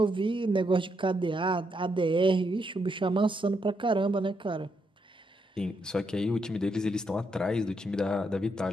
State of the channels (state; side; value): normal; both; correlation 0.79